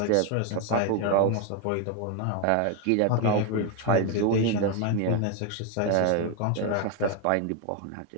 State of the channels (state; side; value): different; both; correlation 0.01